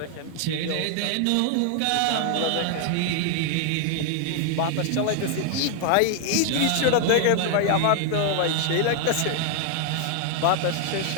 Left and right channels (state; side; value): different; both; correlation 0.00